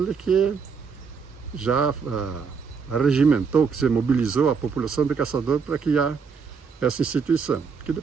que já regimentou, que se mobilizou a população de Caçador para criar essa instituição, que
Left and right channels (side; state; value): left; quieter; 5.7 dB